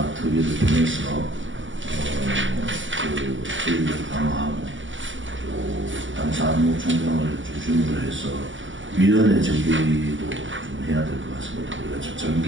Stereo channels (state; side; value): late; left; 0.56 ms